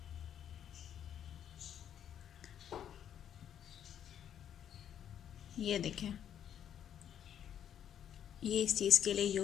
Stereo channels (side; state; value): right; quieter; 9.5 dB